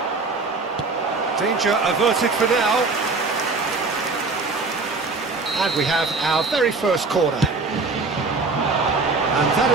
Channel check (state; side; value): quieter; left; 3.9 dB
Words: Danger averted for now. And we have our very first corner. And that